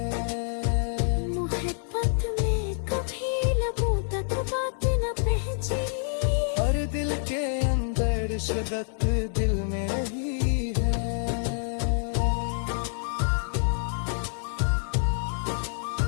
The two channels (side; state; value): right; silent; digital silence